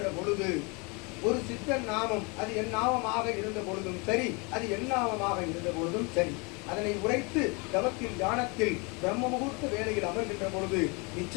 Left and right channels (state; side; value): quieter; right; 30.4 dB